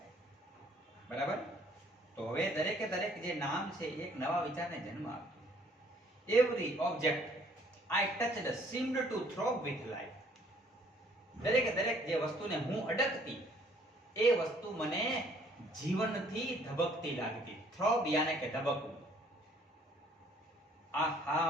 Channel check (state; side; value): normal; both; correlation 0.60